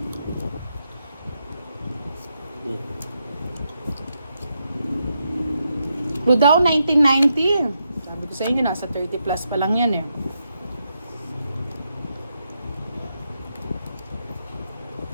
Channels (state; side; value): inverted; both; correlation -0.83